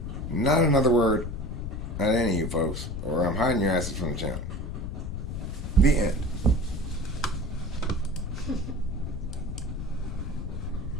Not another word at any of you folks, or I'm hiding your asses from the channel. The end.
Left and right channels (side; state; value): left; noise; rumble, 5 dB below the sound